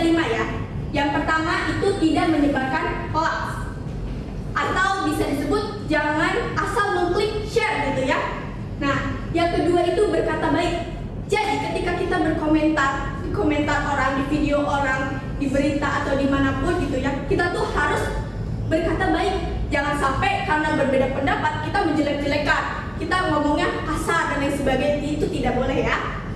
5 ya. Yang pertama itu tidak menyebarkan hoax, atau bisa disebut jangan asal mengklik share gitu ya. Nah, yang kedua itu berkata baik. Jadi ketika kita berkomentar di komentar orang, di video orang, di berita atau dimanapun gitu ya, kita tuh harus berkata baik. Jangan sampai karena berbeda pendapat kita menjelek-jelekan, kita ngomongnya kasar dan lain sebagainya, itu tidak boleh ya.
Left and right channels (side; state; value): both; identical; correlation 1.00